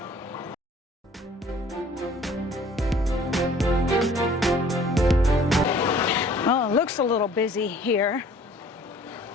Well, it looks a little busy here.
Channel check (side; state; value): both; normal; correlation 0.54